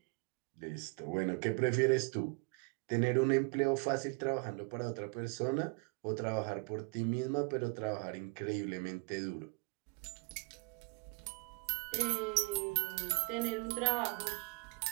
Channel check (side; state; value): left; quieter; 32.2 dB